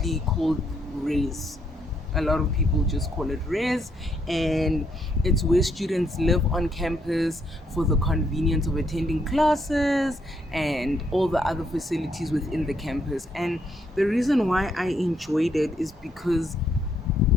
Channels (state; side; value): normal; both; correlation 0.73